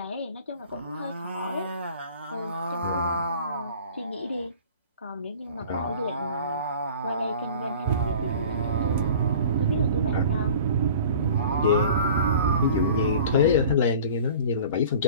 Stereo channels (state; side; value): inverted; both; correlation -0.43